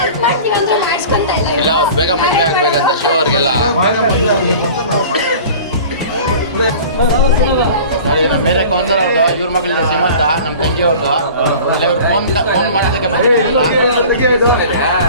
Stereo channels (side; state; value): both; inverted; correlation -0.41